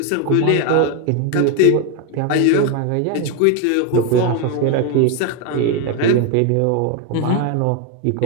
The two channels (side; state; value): both; different; correlation 0.01